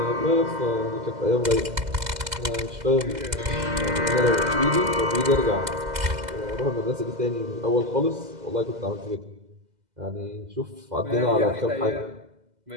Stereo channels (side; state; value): left; late; 2.0 ms